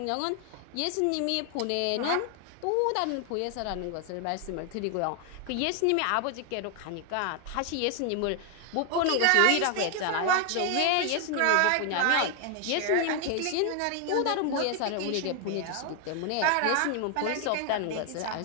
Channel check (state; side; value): different; both; correlation 0.00